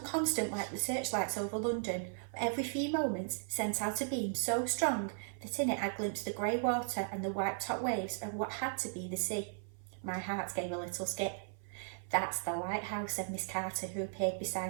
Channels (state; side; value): silent; left; 53 dB below the other